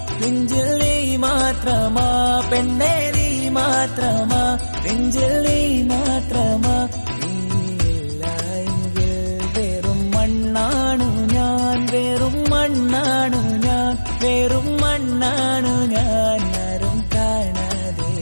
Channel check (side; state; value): both; inverted; correlation -1.00